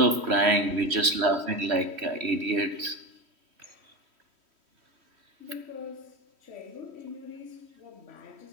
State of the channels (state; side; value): late; left; 3.1 ms